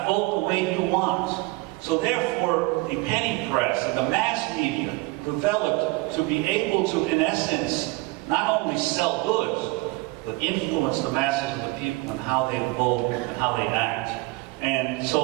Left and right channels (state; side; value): quieter; left; 23.5 dB